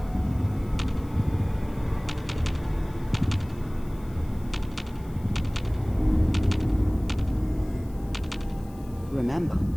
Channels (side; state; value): left; noise; hiss, 26 dB below the sound